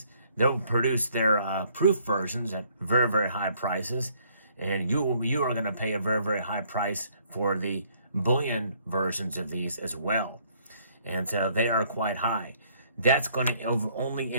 They'll produce their proof versions at very, very high prices, and you are going to pay a very, very high price for the bullion versions of these as well. And so they are quite high. That's going to only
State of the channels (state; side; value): inverted; both; correlation -0.64